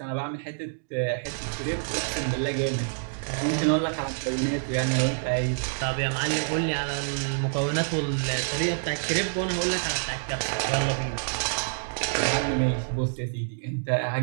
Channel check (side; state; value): left; silent; digital silence